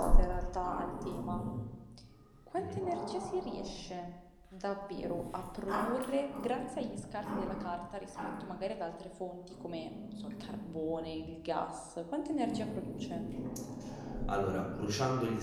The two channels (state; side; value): identical; both; correlation 1.00